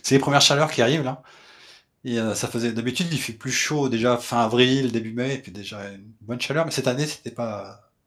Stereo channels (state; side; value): identical; both; correlation 1.00